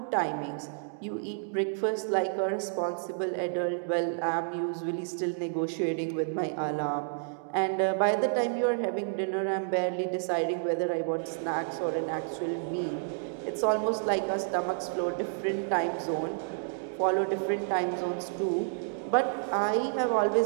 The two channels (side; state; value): left; silent; digital silence